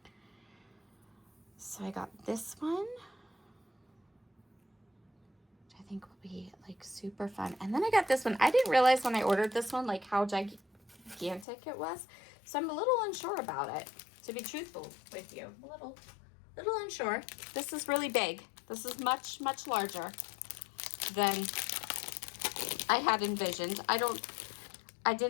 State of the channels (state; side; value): drops out; right; at 11.5 s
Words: So I got this one. I think will be like super fun. And then I got this one. I didn't realize when I ordered this one, like how gigantic it was. So I'm a little unsure about it, to be truthful with you. A little unsure. This is really big. This is much, much larger than I had envisioned. I